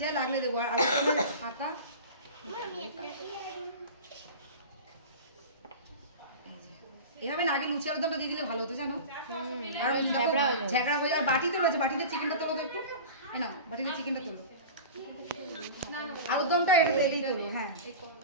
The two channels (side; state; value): both; inverted; correlation -0.33